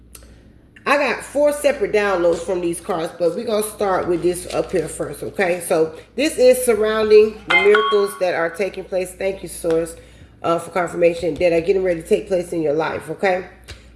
I got 4 separate downloads from these cards, but we're going to start with this up here first, okay? So this is surrounding the miracles that are taking place. Thank you, Source, for confirmation that are getting ready to take place in your life, okay?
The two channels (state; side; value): identical; both; correlation 1.00